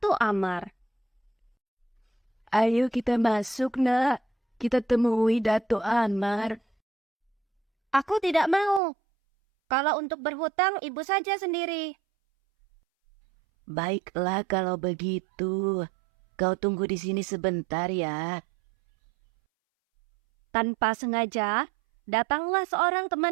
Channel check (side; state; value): left; drops out; at 8.8 s